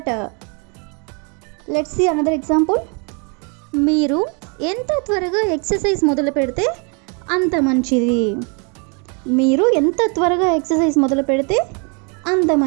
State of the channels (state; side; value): quieter; left; 35.3 dB